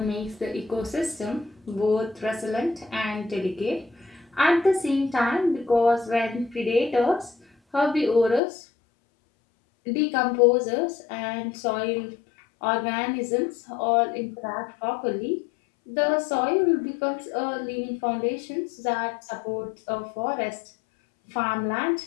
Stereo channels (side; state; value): right; drops out; at 8.4 s